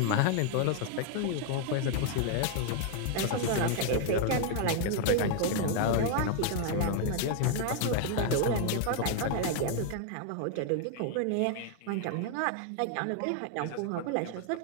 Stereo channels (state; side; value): different; both; correlation 0.00